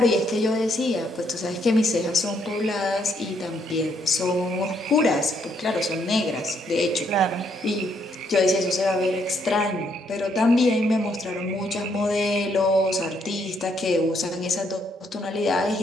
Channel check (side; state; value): both; normal; correlation 0.72